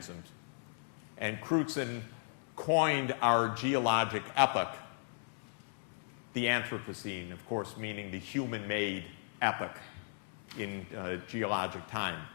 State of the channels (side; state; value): right; silent; 54 dB below the other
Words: And Crutzen coined our geologic epoch the Anthropocene, of course meaning the human-made epoch in geologic time.